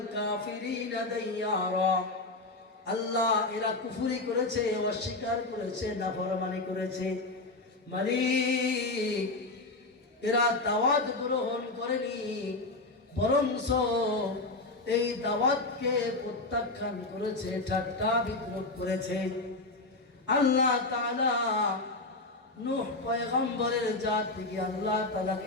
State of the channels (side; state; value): right; quieter; 3.1 dB